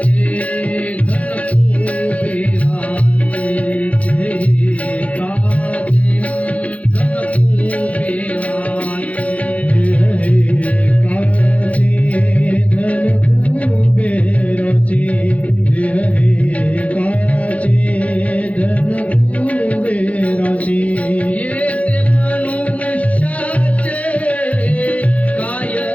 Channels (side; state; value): right; late; 0.067 ms